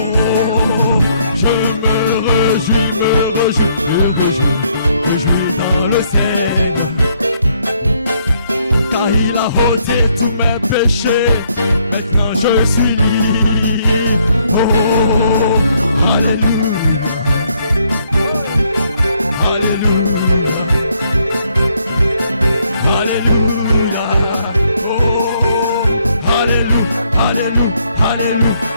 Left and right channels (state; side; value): inverted; both; correlation -0.71